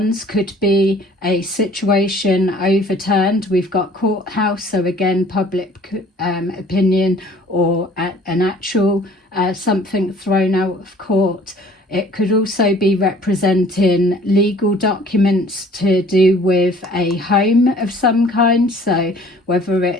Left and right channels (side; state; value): both; normal; correlation 0.53